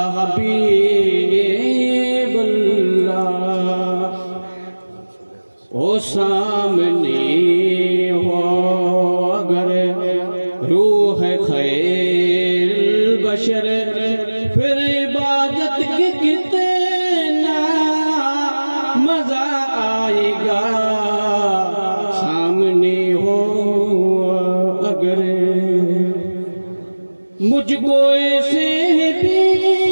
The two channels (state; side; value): inverted; both; correlation -1.00